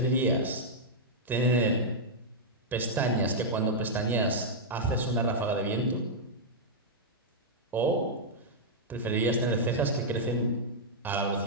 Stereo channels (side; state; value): both; normal; correlation -0.07